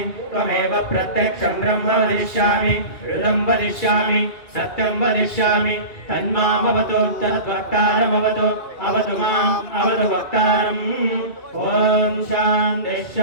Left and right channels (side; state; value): right; late; 2.3 ms